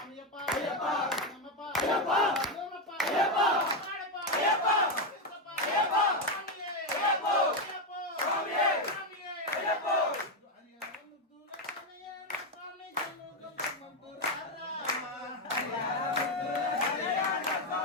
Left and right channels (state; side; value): normal; both; correlation 0.07